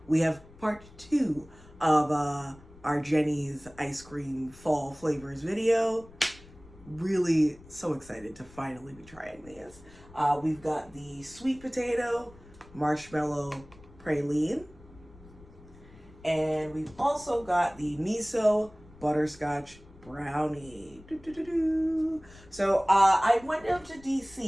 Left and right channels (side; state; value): left; noise; rumble, 22 dB below the sound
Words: we have part 2 of our Jeni's ice cream fall flavors video. Really so excited to finally be trying these. We've got the Sweet Potato Marshmallow Praline, and we've also got the Miso Butterscotch Brownie. So I went down to